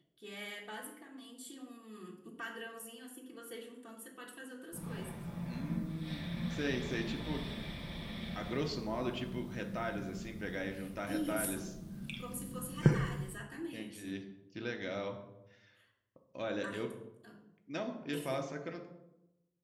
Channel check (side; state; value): both; identical; correlation 1.00